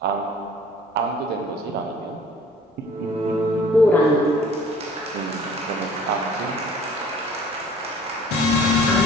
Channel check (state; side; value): normal; both; correlation 0.51